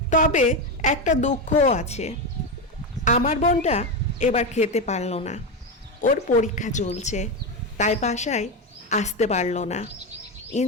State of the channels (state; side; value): normal; both; correlation 0.13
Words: তবে একটা দুঃখও আছে, আমার বোনটা এবার খেতে পারলো না। ওর পরীক্ষা চলছে, তাই বাসায় আসতে পারলো না।